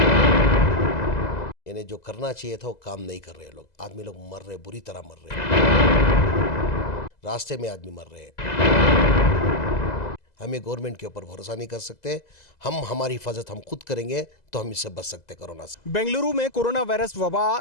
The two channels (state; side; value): late; right; 2.0 ms